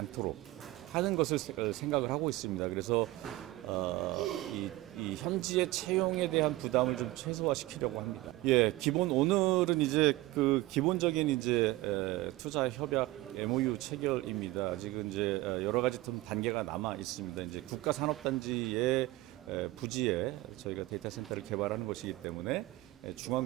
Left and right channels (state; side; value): quieter; left; 18.5 dB